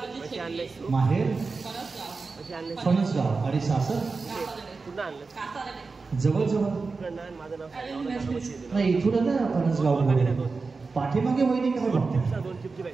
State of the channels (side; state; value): left; quieter; 4.2 dB